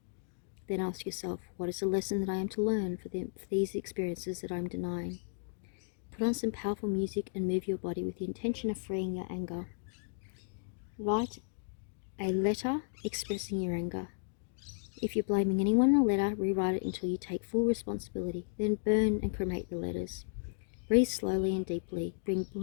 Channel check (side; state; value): right; silent; digital silence